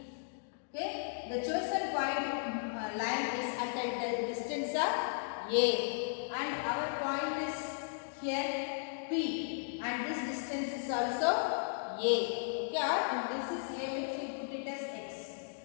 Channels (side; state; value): right; silent; digital silence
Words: Okay, the chosen point line is at the distance of A, and our point is here P, and this distance is also A. Okay, and this is A, which we put it as X.